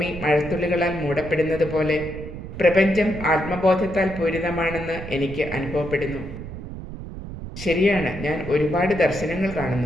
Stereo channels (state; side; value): noise; right; rumble, 10 dB below the sound